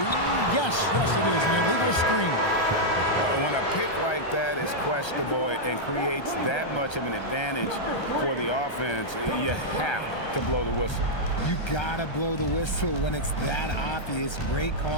yes, it is, an illegal screen. When a pick like that is questionable and creates that much of an advantage for the offense, you have to blow the whistle. You gotta blow the whistle when it's that obvious. Great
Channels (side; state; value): right; late; 1.3 ms